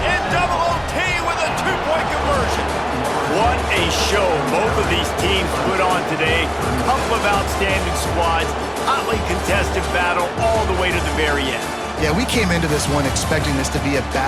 in double OT with a 2-point conversion. What a show both of these teams put on today. Couple of outstanding squads, hotly contested battle all the way to the very end. Yeah, we came into this one expecting this to be a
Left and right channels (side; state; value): both; identical; correlation 1.00